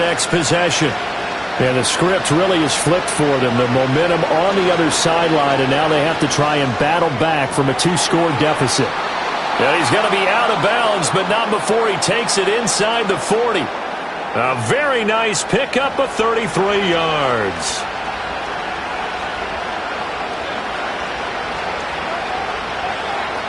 possession. And the script really is flipped for them. The momentum on the other sideline, and now they have to try and battle back from a 2-score deficit. And he's going to be out of bounds, but not before he takes it inside the 40. A very nice pickup of 33 yards.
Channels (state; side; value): identical; both; correlation 1.00